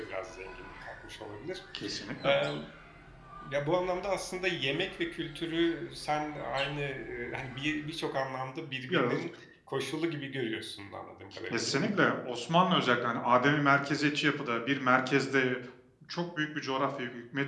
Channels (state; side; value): identical; both; correlation 1.00